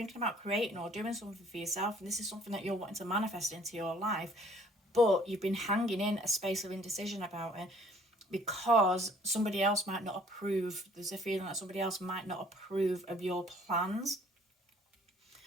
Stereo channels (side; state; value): both; normal; correlation 0.58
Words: about creating or doing something for yourself, and this is something that you're wanting to manifest into your life, but you've been hanging in a space of indecision about it because somebody else might not approve. There's a feeling that somebody else might not approve of your plans.